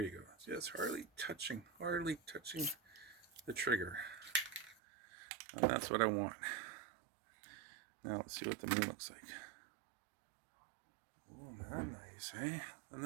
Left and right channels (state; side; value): drops out; left; at 4.8 s